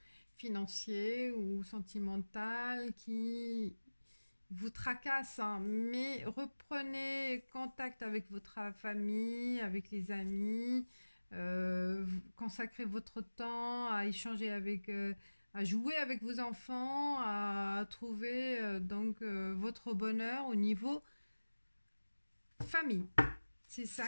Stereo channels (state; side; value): inverted; both; correlation -1.00